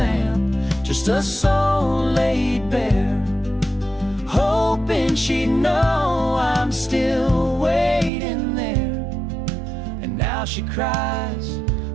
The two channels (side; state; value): left; drops out; at 8.1 s